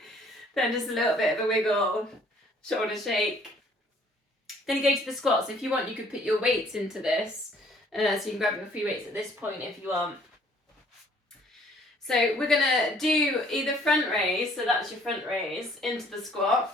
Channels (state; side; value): normal; both; correlation 0.59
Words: Then just a little bit of a wiggle, shoulder shake. Then you go to the squats. If you want, you could put your weights into this. So you can grab your free weights at this point if you want. So we're going to do either front raise, so that's your front raise, into the